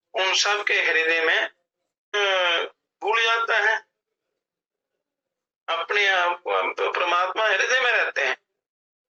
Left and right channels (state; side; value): identical; both; correlation 1.00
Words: सब के हृदय में भूल जाता है। अपने आप को हम तो परमात्मा हृदय में रहते हैं,